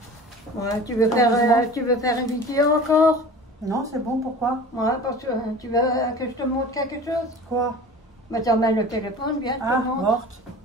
Ouais, tu veux faire une vidéo encore? va. Non, c'est bon, pourquoi? Ouais, parce que tu veux que je te montre quelque chose? Quoi? Mais t'emmènes le téléphone, bien, je Ah, te montre. morte.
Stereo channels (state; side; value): normal; both; correlation 0.40